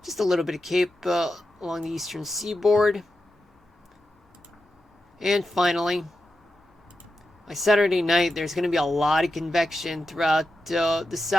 Just a little bit of cape along the eastern seaboard. And finally, by Saturday night, there's going to be a lot of convection throughout the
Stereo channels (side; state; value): both; normal; correlation 0.90